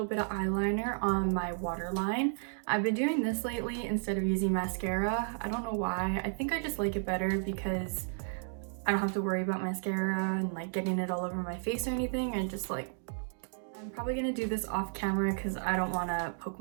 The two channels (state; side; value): silent; left; digital silence